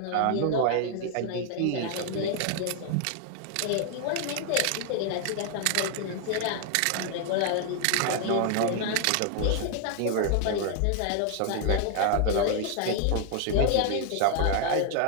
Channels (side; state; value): both; different; correlation 0.00